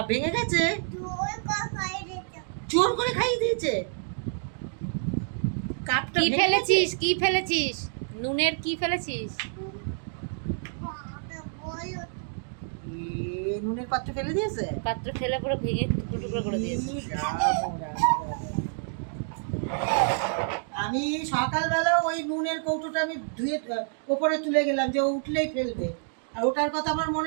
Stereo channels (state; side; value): silent; left; digital silence